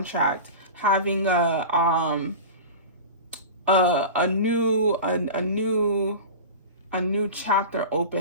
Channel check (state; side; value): inverted; both; correlation -0.31